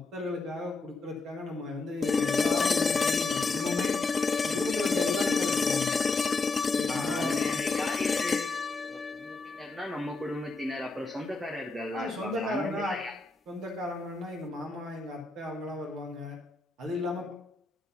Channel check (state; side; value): quieter; right; 3.7 dB